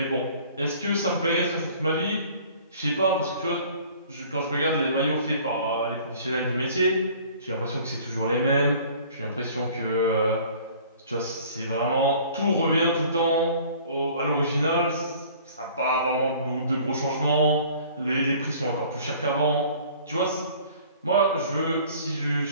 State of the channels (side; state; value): both; inverted; correlation -0.50